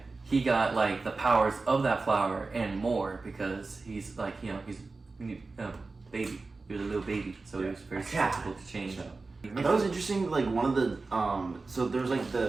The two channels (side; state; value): left; quieter; 3.8 dB